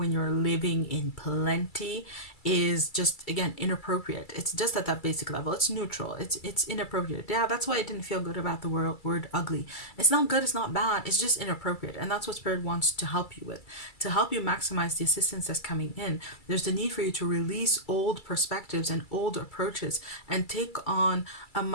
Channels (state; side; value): late; right; 2.3 ms